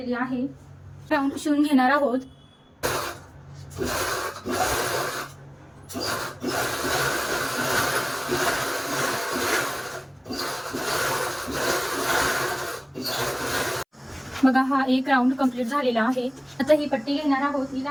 आहे। राऊंड शिवून घेणार आहोत। बघा हा एक राऊंड कंप्लीट झालेला आहे। आता ही पट्टी घेणार आहोत, हिला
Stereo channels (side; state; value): both; identical; correlation 1.00